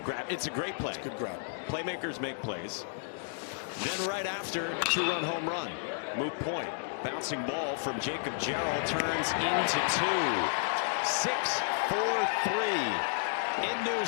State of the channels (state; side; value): silent; right; digital silence